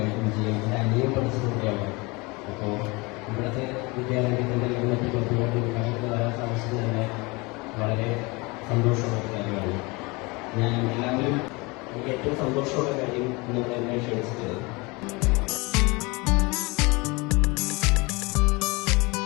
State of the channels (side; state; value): right; quieter; 25.9 dB